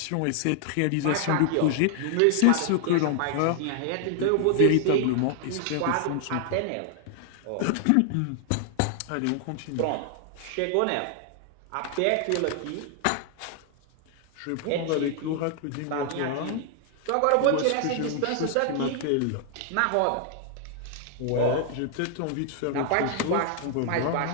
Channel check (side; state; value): both; different; correlation 0.00